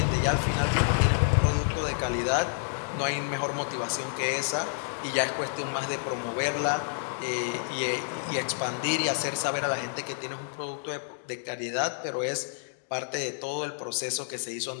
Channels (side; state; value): right; silent; digital silence